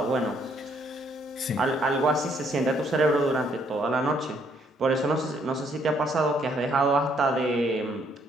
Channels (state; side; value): normal; both; correlation 0.68